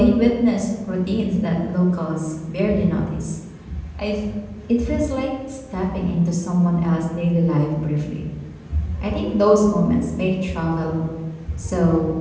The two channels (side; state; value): both; identical; correlation 1.00